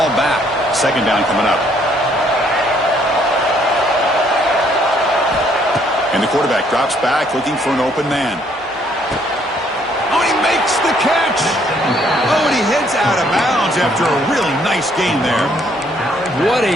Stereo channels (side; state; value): both; normal; correlation 0.66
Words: back. Second down coming up. And the quarterback drops back looking for an open man. Oh, he makes the catch. Oh, and he heads out of bounds after a really nice gain there. What